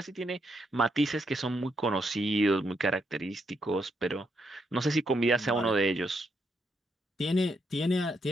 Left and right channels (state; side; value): normal; both; correlation 0.78